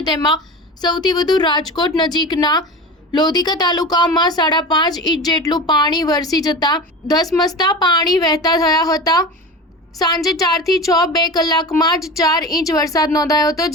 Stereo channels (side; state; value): both; normal; correlation 0.31